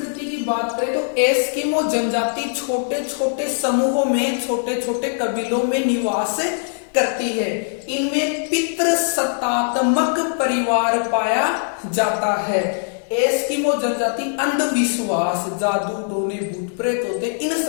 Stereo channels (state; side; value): silent; right; digital silence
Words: की बात करें तो एस्किमो जनजाति छोटे छोटे समूहों में, छोटे छोटे कबीलों में निवास करती है। इनमें पितृसत्तात्मक परिवार पाया जाता है। एस्किमो जनजाति अंधविश्वास, जादू टोने भूत प्रेत होते, इन